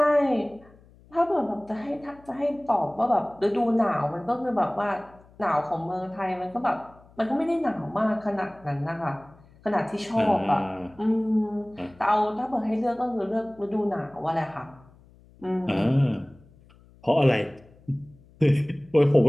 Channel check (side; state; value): left; noise; hum, 27 dB below the sound